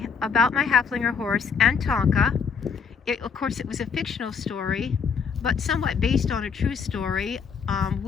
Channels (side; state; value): right; quieter; 6.0 dB